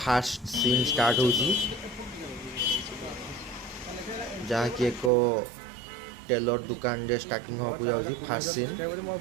सीन स्टार्ट होची जहाँ की एक टेलर दुकान रे स्टार्टिंग हो जाउची फास्ट सीन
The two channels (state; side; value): drops out; left; at 5.1 s